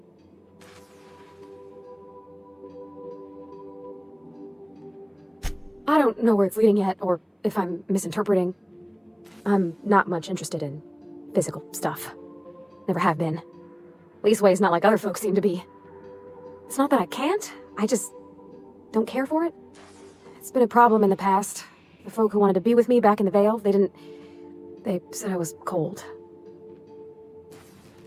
I don't know where it's leading yet, or if I'm misinterpreting. I'm not much interested in physical stuff. Never have been. Leastways, not like other folks seem to be. It's not that I can't, I just don't care for it. It's been a problem in the past. The folk who wanted to be with me back in the Vale, they said I was cold.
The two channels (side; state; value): both; identical; correlation 1.00